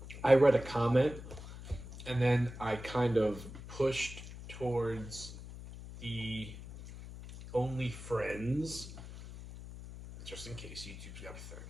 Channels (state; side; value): noise; left; hum, 12 dB below the sound